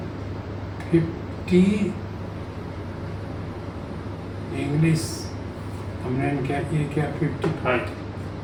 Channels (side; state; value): both; identical; correlation 1.00